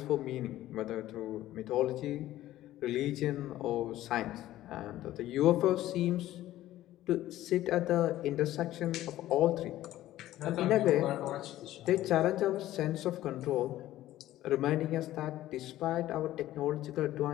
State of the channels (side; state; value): right; quieter; 14.5 dB